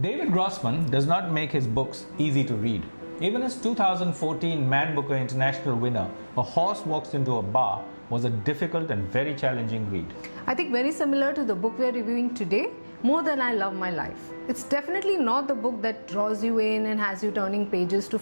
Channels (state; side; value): inverted; both; correlation -1.00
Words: David Grossman does not make his books easy to read. Even his 2014 Man Booker International winner, A Horse Walks Into a Bar, was a difficult and very challenging read. I think very similar to the book we are reviewing today, More Than I Love My Life. It's definitely not the book that draws you in and has you turning pages to